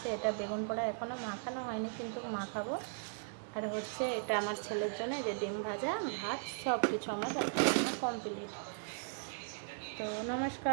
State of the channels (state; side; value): silent; left; 53 dB below the other